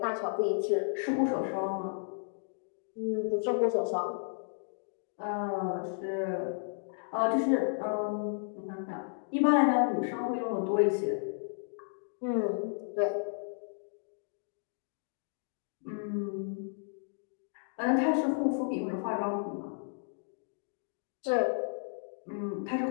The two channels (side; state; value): right; silent; digital silence